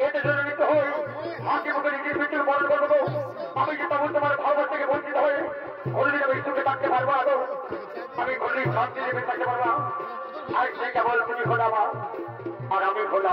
এতে জড়িত হয়ে হাসি মুখে নিজের মৃত্যুর বরণ করবো আমি যে তখন তোমার ভালোবাসা থেকে বঞ্চিত হয়ে কোনদিন আমি সুখে থাকতে পারবো না আমি কোনদিন শান্তি দেবে থাকতে পারবো আর সে কেবল তুমি হলো আমার আর আমি হলো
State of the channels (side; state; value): both; identical; correlation 1.00